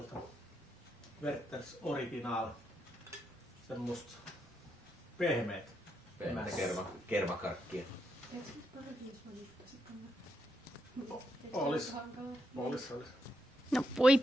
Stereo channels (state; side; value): normal; both; correlation 0.80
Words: Werthers Original. Semmosta pehmeät. Pehmeät kermakarkkia. Olis. No voi